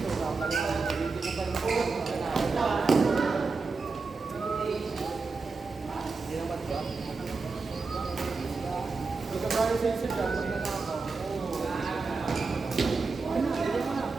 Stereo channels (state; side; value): quieter; left; 4.3 dB